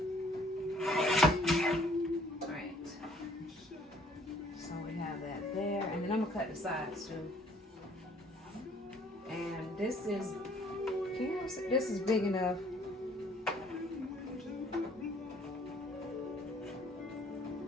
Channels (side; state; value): both; normal; correlation 0.60